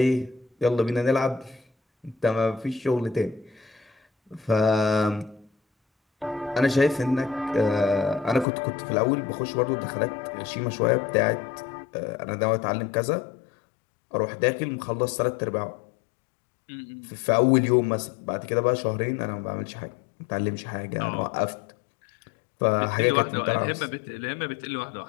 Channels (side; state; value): right; drops out; at 8.5 s